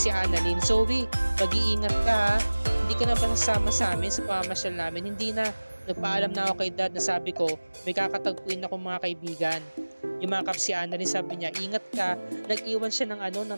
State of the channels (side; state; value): both; inverted; correlation -1.00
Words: Annalyn. "Zoe, mag-iingat ka ha. Hindi ka na ba sasama sa amin sa pamamasyal namin?" "Hindi na. Nagpaalam na ako kay dad na sabi ko may kakatagpuin akong mga kaibigan." Yumakap si Annalyn, sabi niya, "Ingat ka." Nag-iwan siya